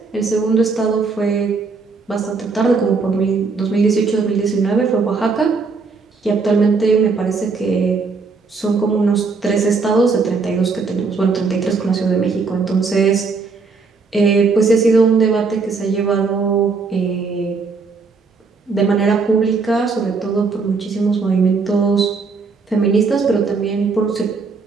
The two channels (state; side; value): quieter; left; 4.5 dB